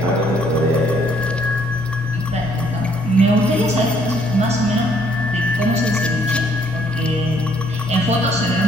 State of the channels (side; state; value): both; normal; correlation 0.66